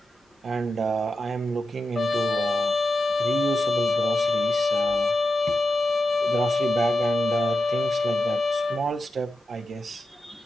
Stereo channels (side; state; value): both; normal; correlation 0.89